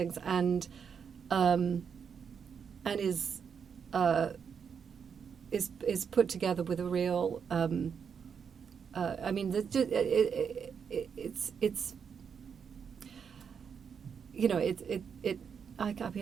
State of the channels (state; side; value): quieter; left; 6.8 dB